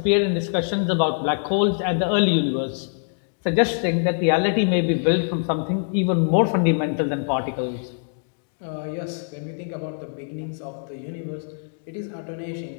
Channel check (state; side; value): silent; right; digital silence